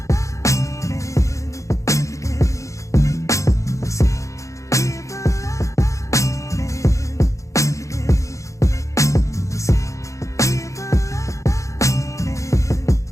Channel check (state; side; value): late; right; 0.15 ms